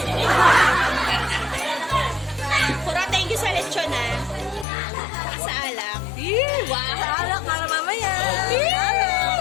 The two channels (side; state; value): right; drops out; at 4.7 s